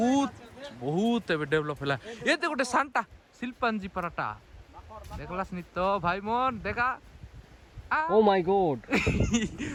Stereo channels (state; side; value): identical; both; correlation 1.00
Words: बहुत एबे डेवलप हैला ये ते गोटे सांता शिल्पांजी पराटा देखलास नि तो भाई मन देखा ओ माय गॉड